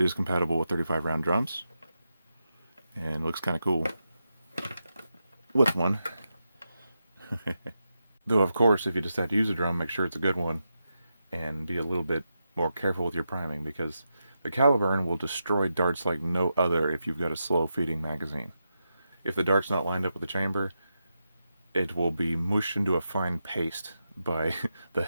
is compatible with 35 round drums, and looks kind of cool with one. Though, of course, if you decide to use a drum, make sure it's a good one, and be a little bit more careful with your priming, because the Caliburn will destroy darts like no other if you've got a slow feeding magazine. If the dart's not lined up with the chamber, it will be mushed into a fine paste by the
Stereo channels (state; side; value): inverted; both; correlation -0.87